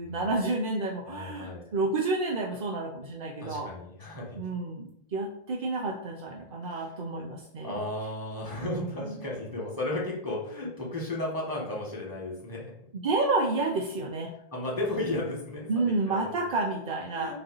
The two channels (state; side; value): late; right; 1.8 ms